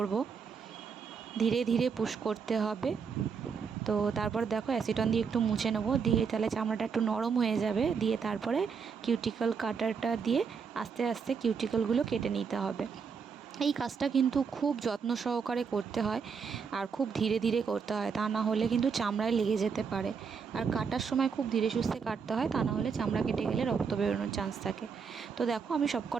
ধীরে ধীরে পুশ করতে হবে। তো তারপর দেখো অ্যাসিটন দিয়ে একটু মুছে নেবো, দিয়ে তাহলে চামড়াটা একটু নরম হয়ে যাবে। দিয়ে তারপরে কিউটিকল কাটারটা দিয়ে আস্তে আস্তে কিউটিকলগুলো কেটে নিতে হবে। এই কাজটা কিন্তু খুব যত্ন সহকারে করতে হয় আর খুব ধীরে ধীরে করতে হয়, তা না হলে কিন্তু চামড়ায় লেগে যেতে পারে। আর কাটার সময় খুব ধীরে সুস্থে কাটতে হয়, তা না হলে চামড়া কেটে গেলে রক্ত বেরোনোর চান্স থাকে। তো দেখো আমি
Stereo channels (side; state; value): left; quieter; 5.9 dB